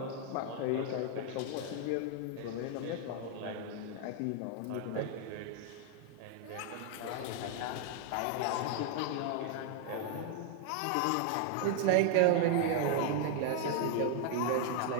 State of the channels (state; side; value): different; both; correlation 0.00